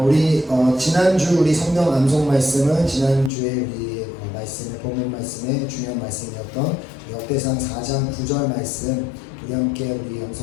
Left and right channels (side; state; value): right; drops out; at 3.3 s